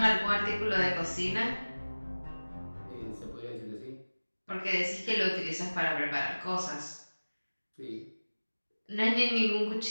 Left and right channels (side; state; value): both; inverted; correlation -1.00